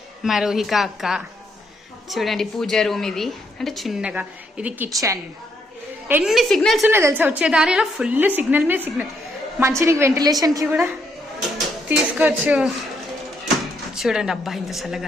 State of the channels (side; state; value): both; normal; correlation 0.75